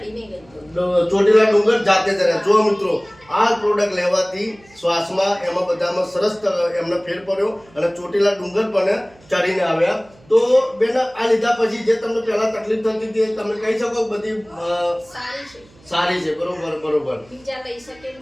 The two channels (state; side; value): noise; right; hum, 28 dB below the sound